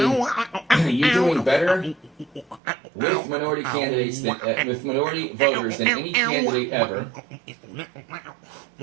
you're doing better with minority candidates than with minority voters than any candidate ever.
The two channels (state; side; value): drops out; left; at 2.6 s